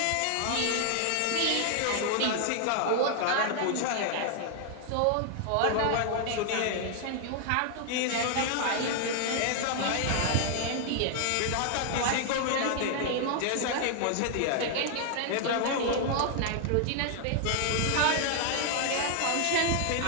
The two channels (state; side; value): different; both; correlation 0.00